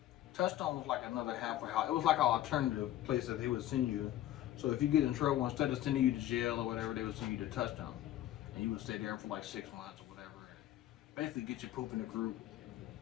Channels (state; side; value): quieter; right; 13.2 dB